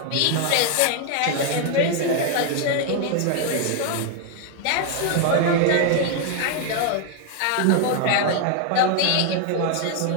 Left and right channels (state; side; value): different; both; correlation 0.01